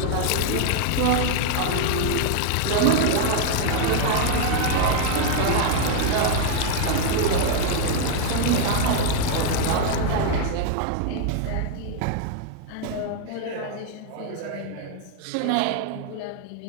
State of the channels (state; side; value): different; both; correlation 0.00